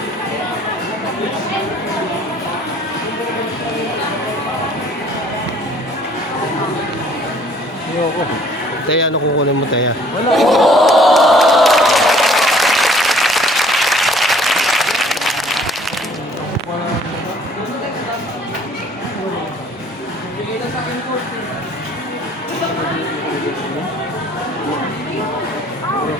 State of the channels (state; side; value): normal; both; correlation 0.56